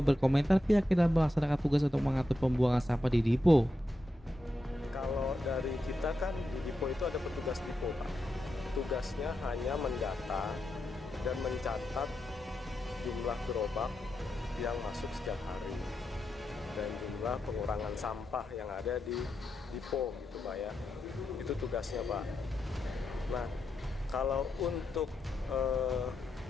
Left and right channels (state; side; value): normal; both; correlation 0.87